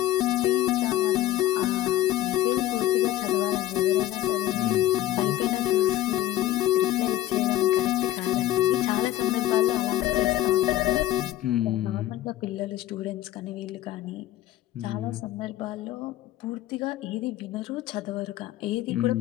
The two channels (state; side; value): quieter; right; 14.2 dB